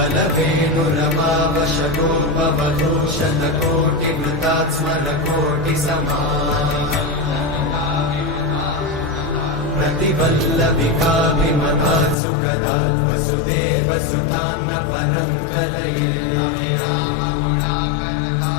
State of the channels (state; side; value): drops out; right; at 12.2 s